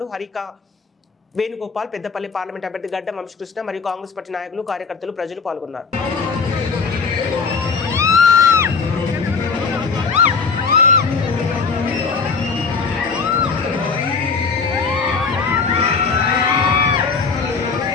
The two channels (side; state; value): right; quieter; 5.1 dB